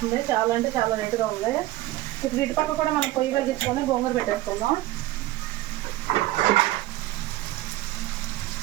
చాలా అంటే చాలా రేటుగా ఉంది. ఇప్పుడు ఇటు పక్క కూడా మనం పొయ్యి వెలిగించుకొని గోంగూర పెట్టేసుకుందాం.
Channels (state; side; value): quieter; left; 16.6 dB